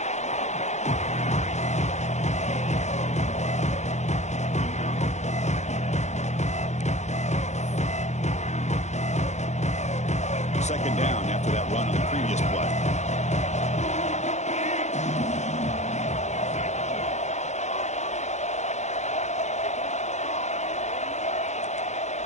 Second down after that run on the previous play.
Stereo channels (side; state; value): right; late; 0.33 ms